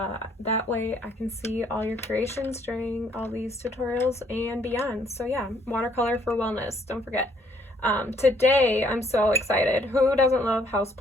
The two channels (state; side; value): normal; both; correlation 0.66